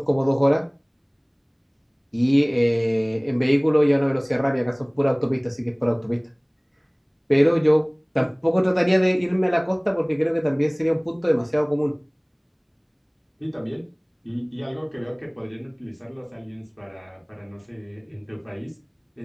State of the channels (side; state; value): both; identical; correlation 1.00